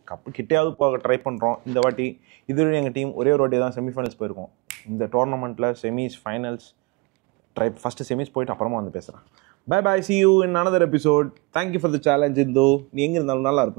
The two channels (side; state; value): left; quieter; 26.5 dB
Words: கிட்டையாவது போக ட்ரை பண்றோம் இந்த வாட்டி. இதுவரை எங்க டீம் ஒரே ஒரு வாட்டி தான் செமிஃபைனல்ஸ் போயிருக்கோம். இந்த டோர்னமெண்ட்ல செமிஸ் ஃபைனல்ஸ் ஃபர்ஸ்ட் செமிஸ் போயிட்டு அப்புறமா வந்து பேசுறேன். Bye bye, see you in another episode. Thank you for the challenge. இந்தோ நீ எங்க இருந்தாலும் நல்லா